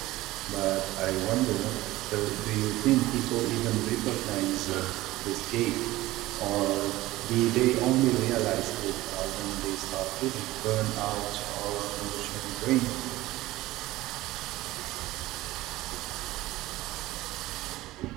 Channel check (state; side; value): quieter; left; 17.6 dB